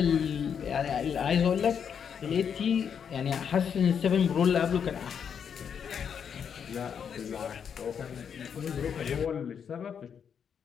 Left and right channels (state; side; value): quieter; right; 7.5 dB